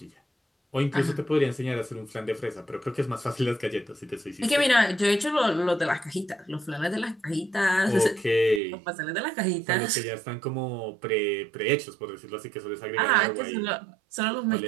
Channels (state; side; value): drops out; left; at 8.6 s